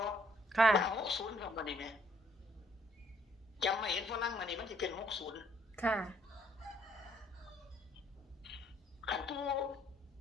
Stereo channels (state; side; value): normal; both; correlation 0.66